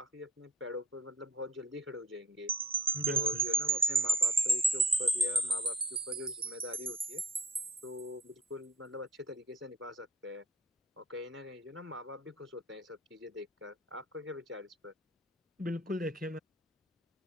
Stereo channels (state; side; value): normal; both; correlation 0.45